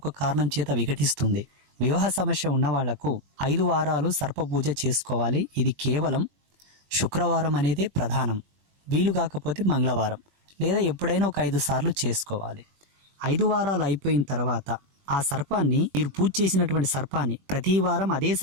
కారణం చేత విఘటిస్తుంది. వివాహ సమస్య ఉన్న వాళ్లకు 5 వారాలు సర్ప పూజ చేసుకోవాలి. ఇది కేవలం శుక్రవారం అనేదే ప్రధానం. వీలు కాకపోతే మంగళవారం లేదా ఎప్పుడైనా ఒక 5 సార్లు చేసుకోవాలి. 5 వారాలు అయిపోయిన తర్వాత ఆ సర్పాన్ని, మీరు పూజ చేసినటువంటి సర్పాన్ని ప్రతి వారం అదే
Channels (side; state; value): left; late; 21 ms